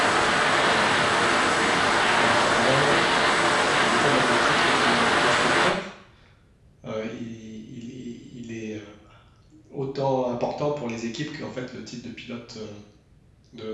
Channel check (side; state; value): both; identical; correlation 1.00